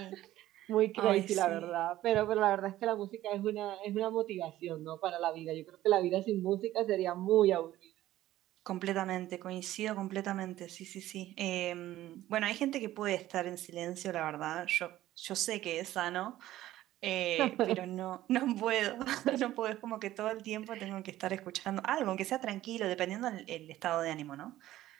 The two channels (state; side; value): quieter; left; 14.5 dB